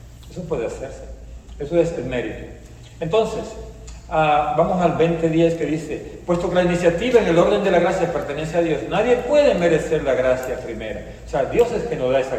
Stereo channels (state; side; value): identical; both; correlation 1.00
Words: Eso puede hacerse. Eso es el mérito. Entonces, vamos al 20:10 que dice, puesto que la iniciativa en el orden de la gracia pertenece a Dios, nadie puede merecer la gracia primera. O sea, Dios es que nos da esa